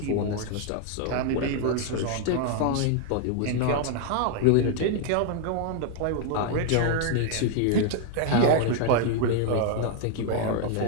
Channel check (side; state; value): both; different; correlation 0.00